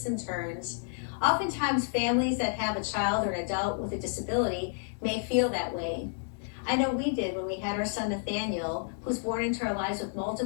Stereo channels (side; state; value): right; silent; digital silence